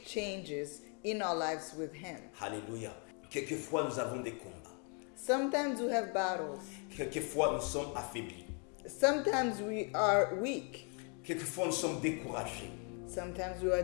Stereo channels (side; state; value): right; quieter; 38.2 dB